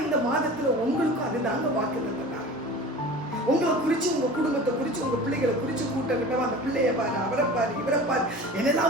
இந்த மாதத்துல உங்களுக்கும் அதுதாங்க வாக்கு தந்தார். உங்களை குறிச்சு, உங்க குடும்பத்தை குறிச்சு, உங்க பிள்ளைகளை குறிச்சு கூட்டம் கிட்டவா, அந்த பிள்ளைய பாரு, அவரை பாரு, இவரை பாரு,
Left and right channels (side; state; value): both; normal; correlation 0.38